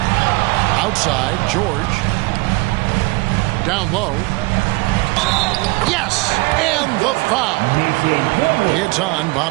Outside, George. Down low. Yes! And the foul. It's on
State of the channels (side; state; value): left; quieter; 24.7 dB